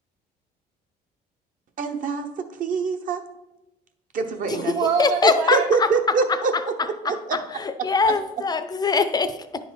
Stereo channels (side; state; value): both; normal; correlation 0.29